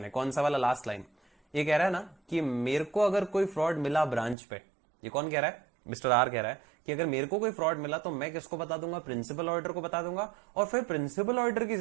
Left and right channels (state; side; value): drops out; left; at 4.4 s